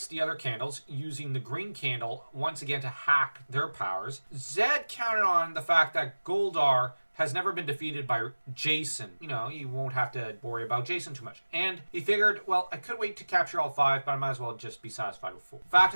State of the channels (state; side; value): inverted; both; correlation -1.00